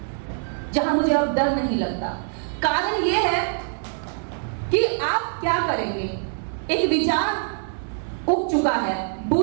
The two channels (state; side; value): silent; left; 63 dB below the other